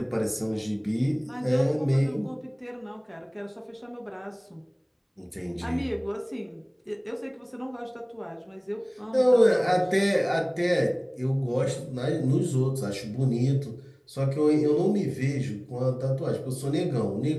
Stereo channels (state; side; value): identical; both; correlation 1.00